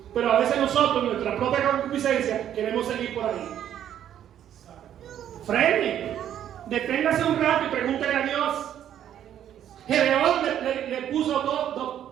Pero a veces nosotros, nuestra propia concupiscencia, queremos seguir por ahí. Frene, deténgase un rato y pregúntele a Dios. Gedeón le puso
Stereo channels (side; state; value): left; quieter; 10.4 dB